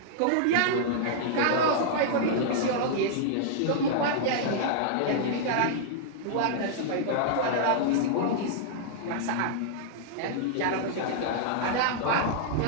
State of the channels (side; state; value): both; different; correlation -0.01